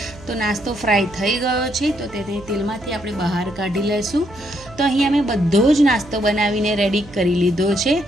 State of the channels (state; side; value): noise; right; hum, 19 dB below the sound